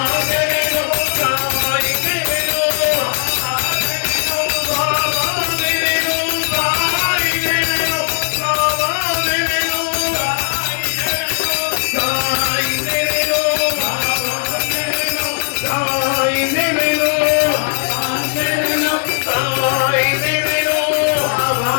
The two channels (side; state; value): right; silent; digital silence